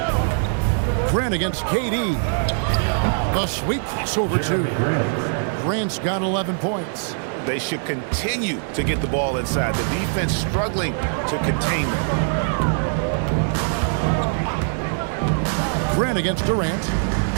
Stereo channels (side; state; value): left; silent; digital silence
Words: Grant against KD. The sweep crossover 2. Grant's got 11 points. They should continue to get the ball inside. The defense struggling to contain them. Grant against Durant.